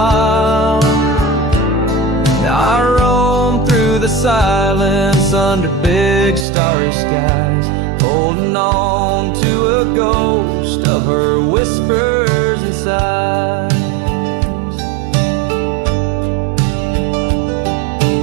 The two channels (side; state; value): left; drops out; at 6.5 s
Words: Now I roam through the silence under big starry skies, holding on to a ghost of her whispers and sighs.